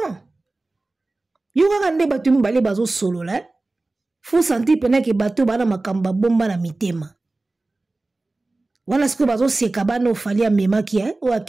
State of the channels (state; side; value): quieter; left; 3.1 dB